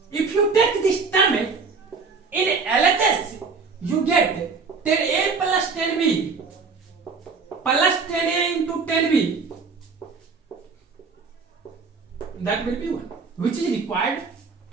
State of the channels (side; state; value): left; quieter; 4.8 dB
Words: If you take this term in LHS, you get 10a plus 10b plus 10a into 10b. That will be 1, which is required